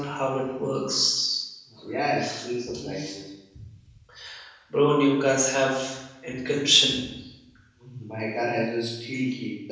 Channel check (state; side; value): identical; both; correlation 1.00